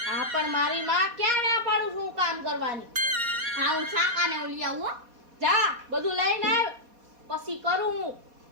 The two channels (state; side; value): late; left; 4.2 ms